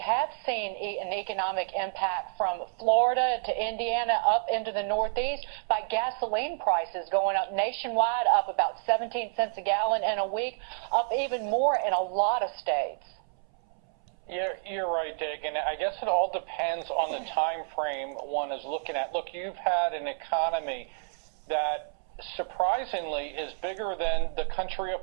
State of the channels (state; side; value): silent; left; 58 dB below the other